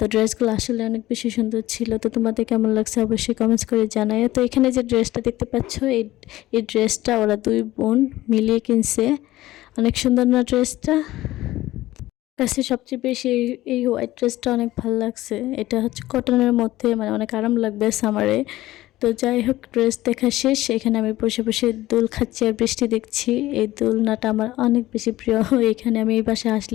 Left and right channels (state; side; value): quieter; right; 16.3 dB